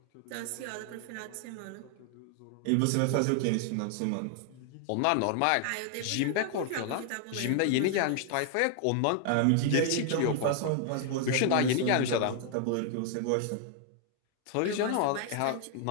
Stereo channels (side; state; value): both; different; correlation 0.00